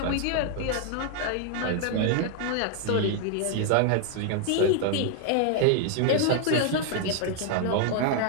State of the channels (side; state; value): both; different; correlation 0.00